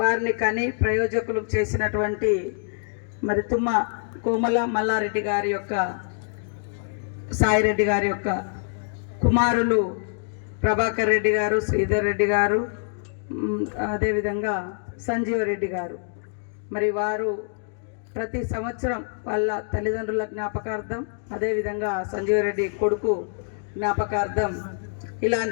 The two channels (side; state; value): right; silent; digital silence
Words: కని ప్రయోజకులు చేసినటువంటి మరి తుమ్మ కోమల మల్లారెడ్డి గారి యొక్క సాయిరెడ్డి గారి యొక్క కుమారులు ప్రభాకర్ రెడ్డి గారు, శ్రీధర్ రెడ్డి గారు, అదేవిధంగా సంజీవ రెడ్డి గారు. మరి వారు ప్రతి సంవత్సరం వాళ్ళ తల్లిదండ్రుల జ్ఞాపకార్థం, అదేవిధంగా సంజీవరెడ్డి కొడుకు జ్ఞాపకార్థం